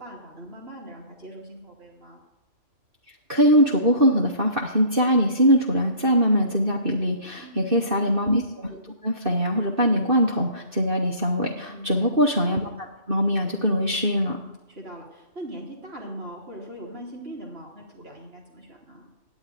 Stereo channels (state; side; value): late; left; 2.6 ms